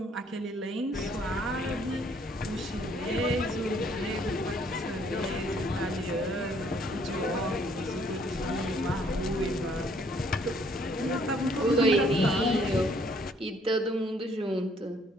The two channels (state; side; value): normal; both; correlation 0.64